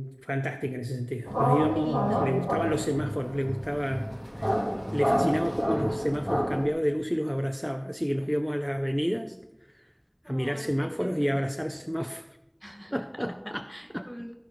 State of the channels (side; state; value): both; identical; correlation 1.00